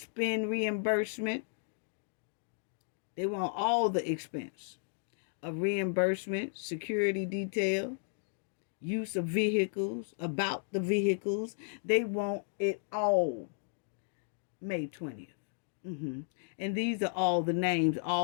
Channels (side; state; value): right; silent; digital silence